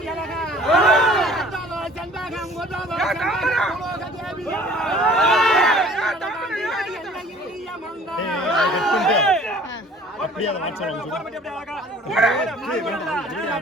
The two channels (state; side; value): normal; both; correlation 0.50